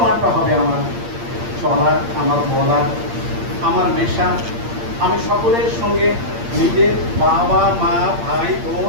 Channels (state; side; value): late; left; 8.7 ms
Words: হবে আমার চলার, আমার বলার, আমার মেশা। আমি সকলের সঙ্গে নিজের বাবা, মা, ভাই,